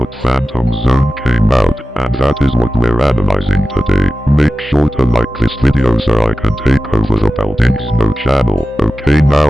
Phantom Zone came out, and that is what we're analyzing today. Make sure to like this video so I can take over the Buildings No channel. Okay,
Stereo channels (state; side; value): normal; both; correlation 0.95